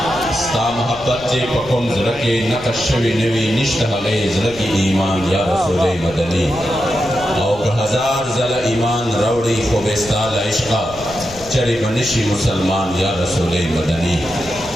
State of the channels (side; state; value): left; noise; rumble, 18 dB below the sound